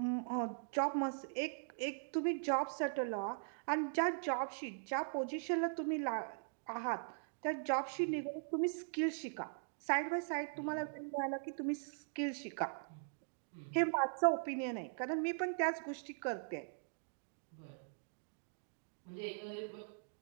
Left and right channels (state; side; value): silent; left; digital silence